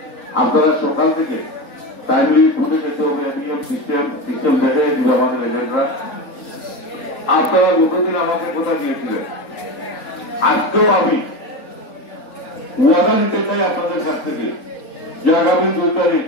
আপনারা সকাল থেকে টাইমলি ছুটে যেতে হবে, সিস্টেম দেখে দিবে আমাদের এজেন্টরা। আপনারা গতদিন আমাকে কথা দিয়েছিলেন, আজকেও আমি ওয়াদা নিতে চাই আপনাদের কাছ থেকে যে আগামী 2 তারিখ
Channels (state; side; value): late; right; 3.9 ms